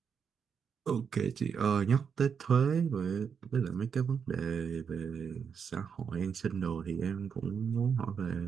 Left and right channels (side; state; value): left; quieter; 6.7 dB